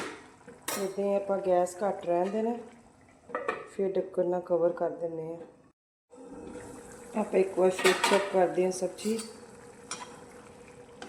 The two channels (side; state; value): both; identical; correlation 1.00